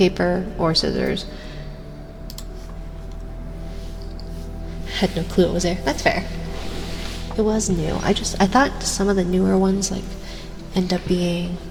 or scissors. Had no clue it was there. That's fair. It was new. I thought some of the newer ones like end up being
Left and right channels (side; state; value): both; identical; correlation 1.00